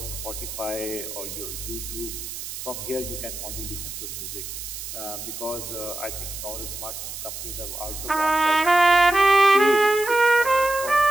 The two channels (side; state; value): right; noise; hiss, 9 dB below the sound